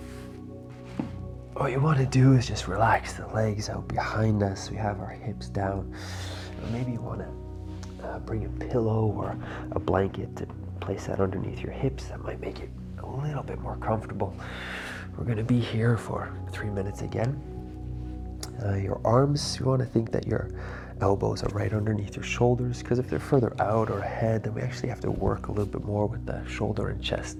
what you want to do is just relax the legs out behind us. We have our hips down. Maybe you want to bring a pillow or a blanket to place that underneath your hips. That might make it a little bit more comfortable. We're going to be here for 3 minutes again. Your arms, you want to think that your elbows are right underneath your shoulders, because if they're further out or ahead, then we actually have to work a little bit more with the shoulder and chest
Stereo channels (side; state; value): both; identical; correlation 1.00